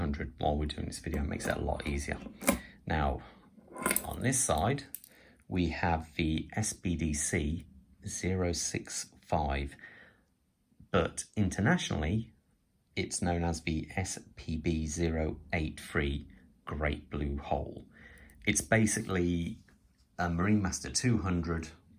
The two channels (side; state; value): both; identical; correlation 1.00